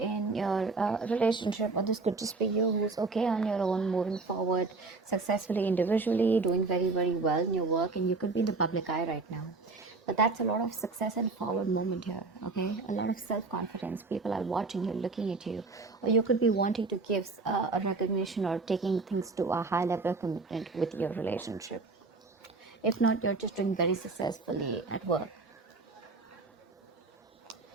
your relationship, or this could just be you who's okay on your own, moving forward successfully individually, doing very, very well in your work, and you could be in the public eye right now. But that's a lot of success and forward movement here, okay? A lot of self confidence. People are watching you, looking at you, or you could be wanting to give a recognition or taking things to a high level of commitment with your relationship. If not, you're just doing very successfully at work.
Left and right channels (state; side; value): quieter; left; 3.9 dB